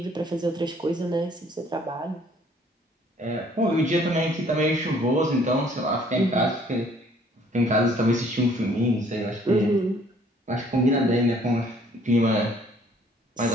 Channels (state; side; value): normal; both; correlation 0.59